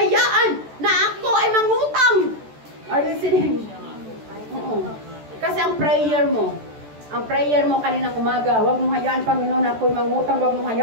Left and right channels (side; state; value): left; late; 14 ms